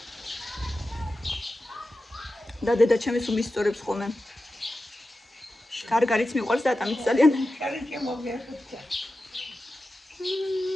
და დედა ჩემი სულ მისწორებს ხოლმე. გარგარიც მიყვარს და ატამიც ძალიან.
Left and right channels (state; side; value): normal; both; correlation 0.93